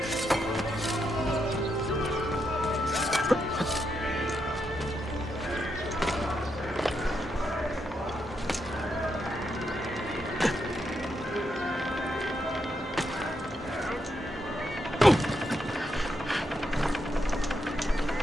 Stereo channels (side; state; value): both; normal; correlation 0.82